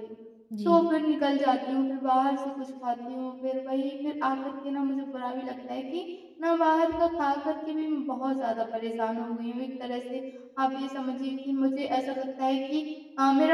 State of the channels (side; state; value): both; identical; correlation 1.00